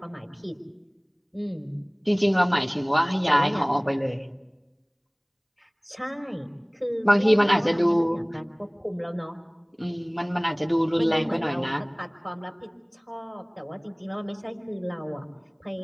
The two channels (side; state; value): both; identical; correlation 1.00